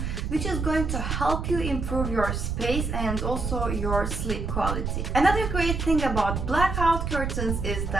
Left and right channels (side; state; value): right; noise; rumble, 2 dB below the sound